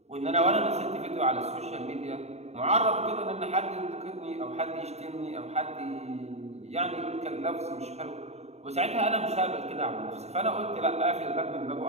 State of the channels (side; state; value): left; late; 0.31 ms